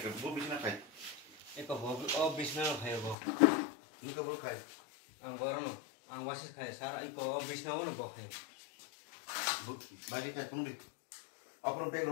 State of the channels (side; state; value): right; drops out; at 3.2 s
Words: Bo bisna khai. Eko bo bisna khai bo. Ni ka bo khai. Ang baron, ang wasis khai. Sara eko bisna bo bo khai. Bo bagi kai turun di. Apron bag